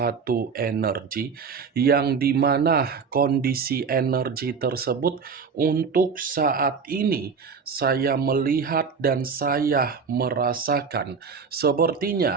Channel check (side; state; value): left; quieter; 5.7 dB